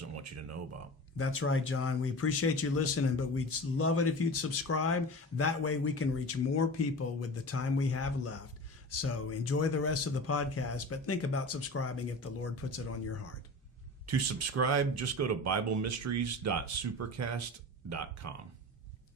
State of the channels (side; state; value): both; normal; correlation 0.33